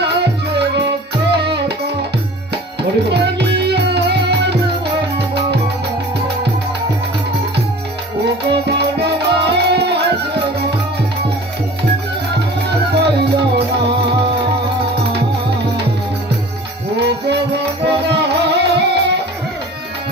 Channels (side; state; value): both; normal; correlation 0.43